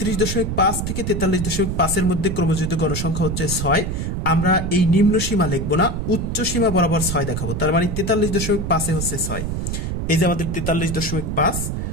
থেকে 43.5 এর মধ্যে ক্রমযুক্ত গণসংখ্যা হচ্ছে 6। আমরা এই নিম্ন সীমা লিখবো না, উচ্চ সীমা বরাবর 6 দেখাবো। তার মানে 43.5 এ হচ্ছে 6। এই যে আমাদের 43.5,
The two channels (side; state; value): right; noise; rumble, 3 dB below the sound